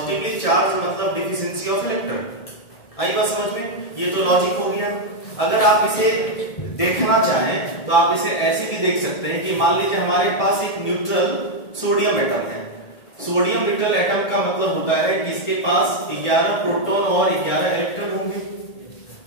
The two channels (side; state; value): right; late; 1.8 ms